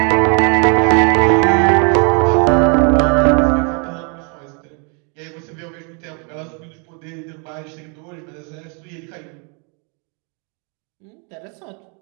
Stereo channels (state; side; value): quieter; left; 36.9 dB